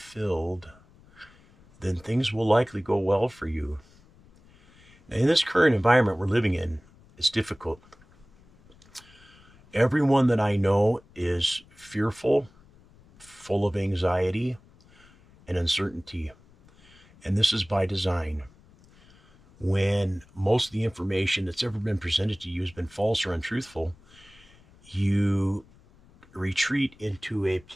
then things will likely go well for you. Now, in this current environment we're living in, it's difficult. Everyone that I know is fearful, full of anxiety and uncertainty. And this is by design. When most of the information that's ever been presented to you has been false or untruthful, you retreat into a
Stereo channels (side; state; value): left; noise; rumble, 27 dB below the sound